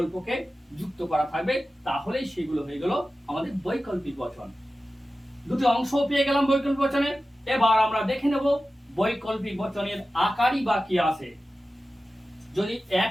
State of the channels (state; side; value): normal; both; correlation 0.94